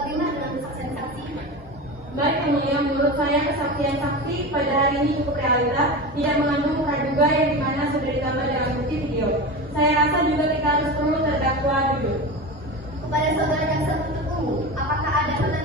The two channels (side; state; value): both; normal; correlation 0.26